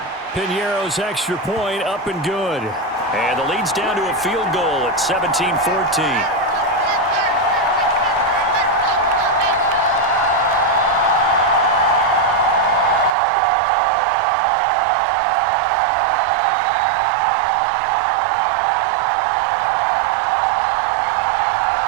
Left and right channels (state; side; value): drops out; left; at 13.2 s